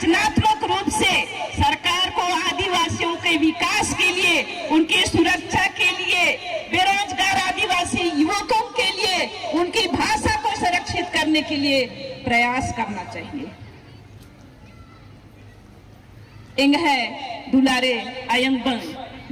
रूप से सरकार को आदिवासियों के विकास के लिए, उनकी सुरक्षा के लिए, बेरोजगार आदिवासी युवकों के लिए, उनकी भाषा को संरक्षित करने के लिए प्रयास करना चाहिए। इंग है दुलारे आयंग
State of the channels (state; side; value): identical; both; correlation 1.00